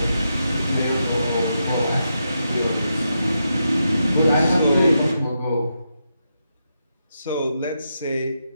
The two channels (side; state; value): both; inverted; correlation -0.84